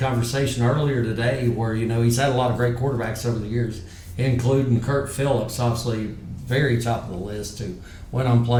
earlier today where, he's had a lot of great quarterbacks over the years, including Kurt Phillips, obviously very top of the list, who went on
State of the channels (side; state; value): both; identical; correlation 1.00